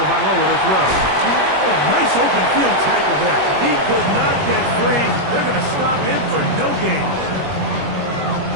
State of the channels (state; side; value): late; left; 21 ms